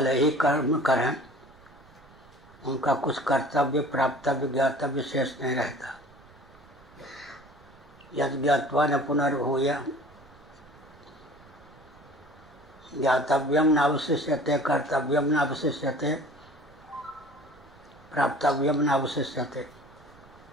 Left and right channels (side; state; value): right; noise; rumble, 26 dB below the sound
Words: ही कर्म करें, उनका कुछ कर्तव्य प्राप्तव्य ज्ञातव्य शेष नहीं रहता। यद ज्ञात्वा न पुनर्भूय ज्ञातव्यम नावशिष्यते कर्तव्यम नावशिष्यते प्राप्तव्यम नावशिष्यते।